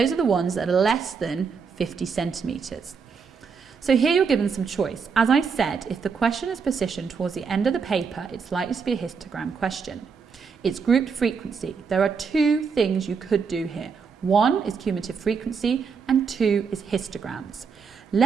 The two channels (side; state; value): left; quieter; 5.7 dB